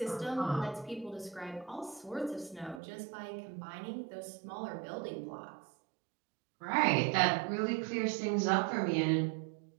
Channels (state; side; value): drops out; left; at 2.8 s